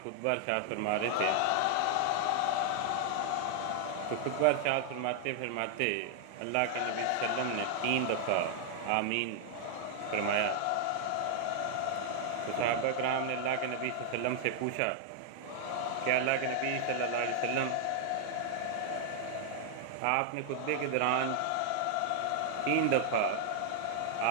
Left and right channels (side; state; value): both; different; correlation 0.00